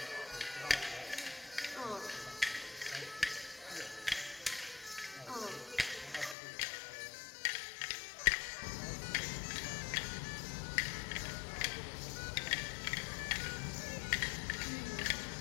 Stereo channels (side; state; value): right; drops out; at 6.4 s